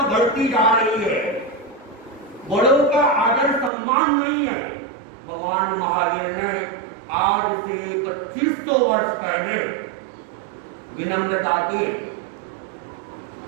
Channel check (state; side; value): drops out; left; at 3.7 s